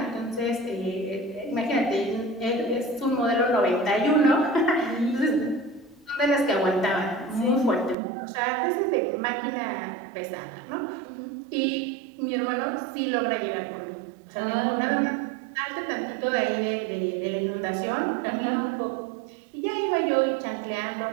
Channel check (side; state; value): left; drops out; at 8.0 s